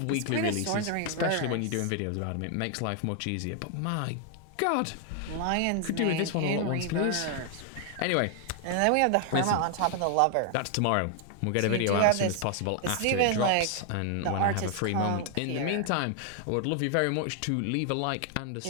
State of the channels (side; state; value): both; different; correlation 0.00